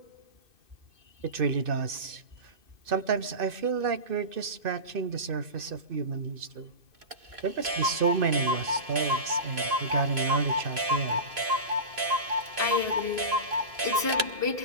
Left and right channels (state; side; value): late; left; 2.6 ms